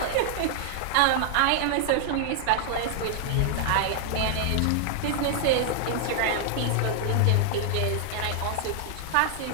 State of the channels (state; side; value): different; both; correlation 0.00